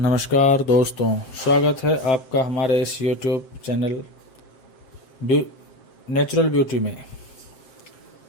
दोस्तों, स्वागत है आपका हमारे इस YouTube चैनल नेचुरल ब्यूटी में।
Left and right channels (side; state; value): right; late; 7.6 ms